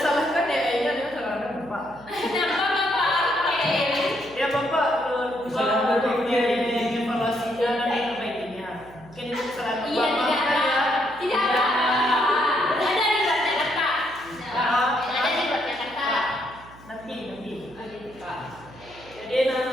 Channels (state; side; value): noise; right; hum, 22 dB below the sound